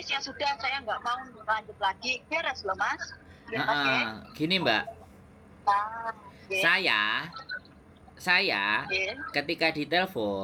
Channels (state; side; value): identical; both; correlation 1.00